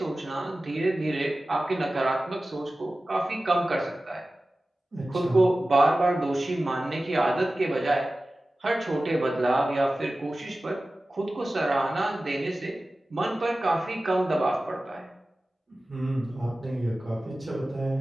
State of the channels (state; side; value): normal; both; correlation 0.96